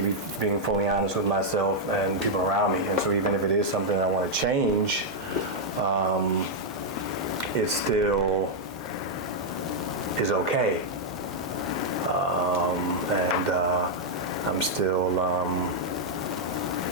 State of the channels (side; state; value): both; normal; correlation -0.04